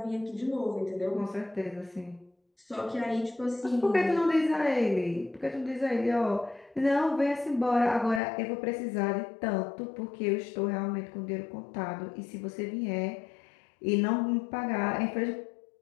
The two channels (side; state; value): right; drops out; at 8.2 s